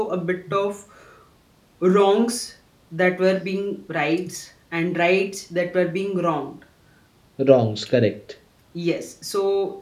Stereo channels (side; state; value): both; identical; correlation 1.00